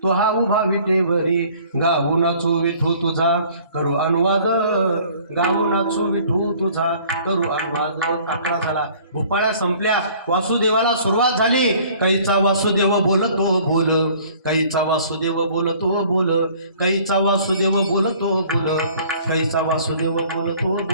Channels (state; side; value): inverted; both; correlation -0.53